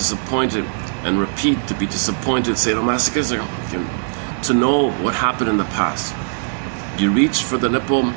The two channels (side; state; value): left; silent; 66 dB below the other